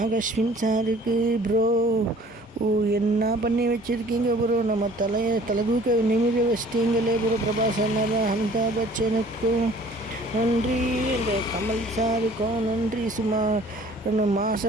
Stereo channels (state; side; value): normal; both; correlation 0.52